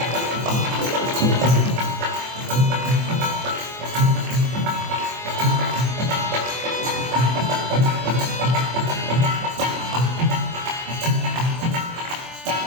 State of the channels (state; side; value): late; left; 24 ms